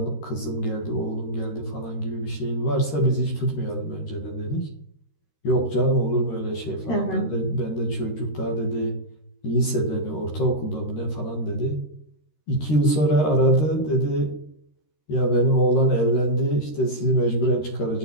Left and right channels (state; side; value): late; right; 13 ms